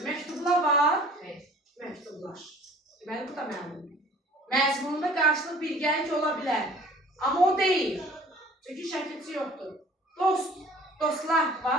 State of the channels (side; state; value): both; normal; correlation 0.50